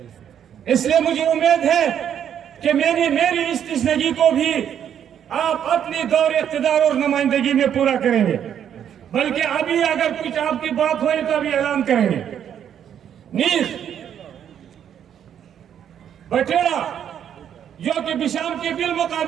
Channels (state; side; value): quieter; left; 9.2 dB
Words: اس لیے مجھے امید ہے کہ میری اس تشنگی کو بھی آپ اپنی دور اقتدار اور نمائندگی میں پورا کریں گے. بلکہ ابھی اگر کچھ آپ کی بات ہوئی تو ابھی اعلان کریں گے. نیز بٹیڑا جو کہ بشام کے